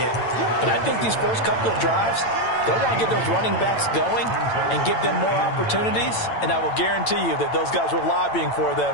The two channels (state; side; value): late; right; 8.9 ms